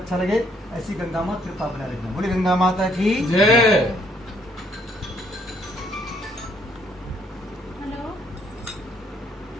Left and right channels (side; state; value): both; normal; correlation 0.67